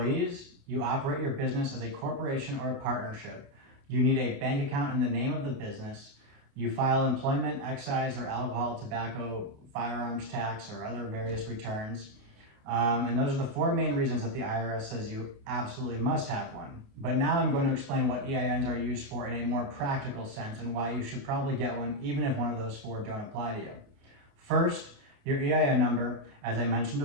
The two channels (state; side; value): late; left; 28 ms